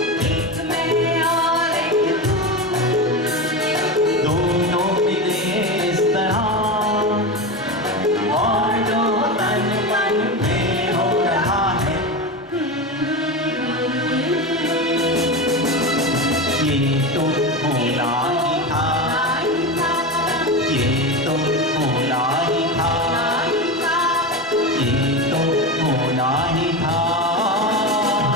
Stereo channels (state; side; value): normal; both; correlation 0.21